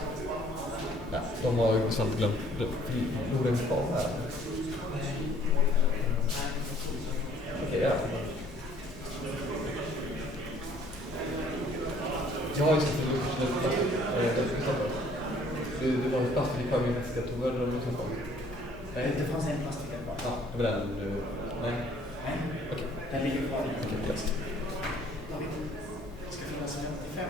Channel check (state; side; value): normal; both; correlation 0.59